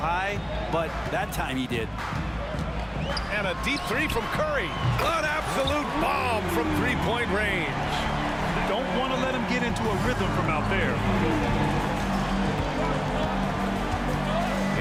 but that time he did. And a deep 3 from Curry. An absolute bomb from 3-point range. Don't want to let him get into a rhythm from out there.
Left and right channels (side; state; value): both; identical; correlation 1.00